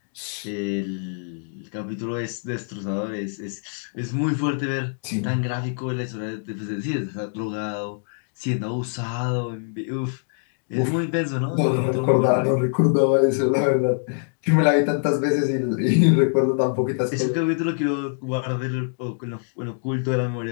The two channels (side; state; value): right; silent; digital silence